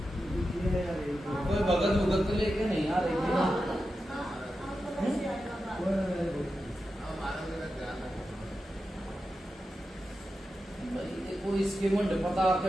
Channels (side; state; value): both; normal; correlation 0.90